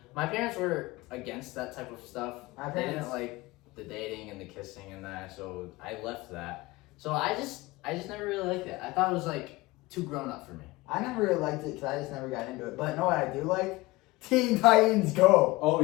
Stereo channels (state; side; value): quieter; right; 20.8 dB